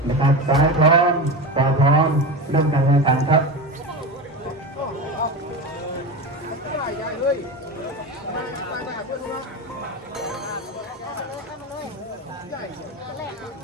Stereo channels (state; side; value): normal; both; correlation 0.24